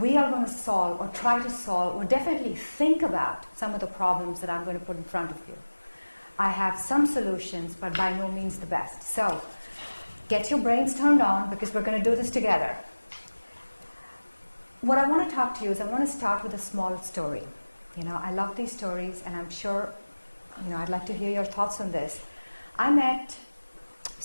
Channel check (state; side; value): inverted; both; correlation -1.00